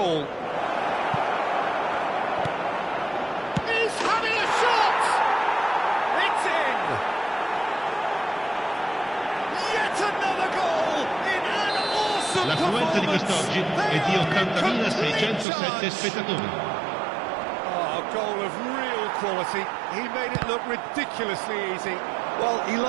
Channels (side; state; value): left; drops out; at 15.5 s